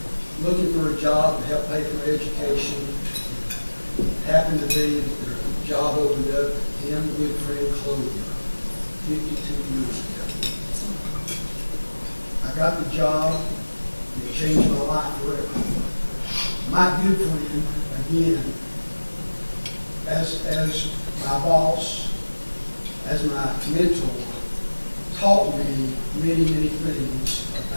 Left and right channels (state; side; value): inverted; both; correlation -1.00